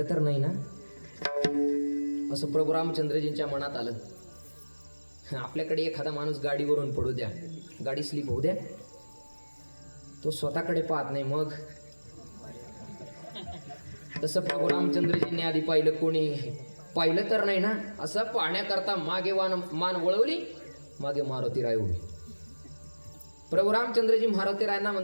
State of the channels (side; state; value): both; inverted; correlation -1.00